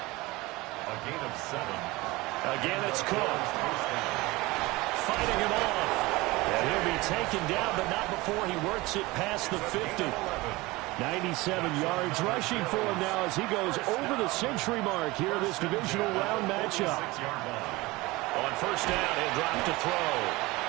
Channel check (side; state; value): left; quieter; 21.5 dB